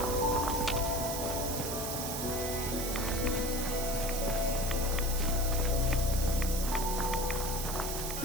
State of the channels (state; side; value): noise; right; hiss, 4 dB below the sound